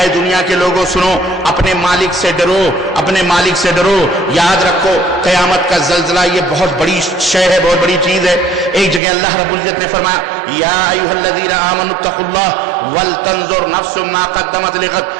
دنیا کے لوگوں سنو, اپنے مالک سے ڈرو, اپنے مالک سے ڈرو. یاد رکھو قیامت کا زلزلہ یہ بہت بڑی شے ہے, بہت بڑی چیز ہے. ایک جگہ اللہ رب العزت نے فرمایا یا ایھا الذین آمنوا اتقوا اللہ ولتنظر نفس ما قدمت لغد,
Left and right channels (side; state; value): left; drops out; at 9.0 s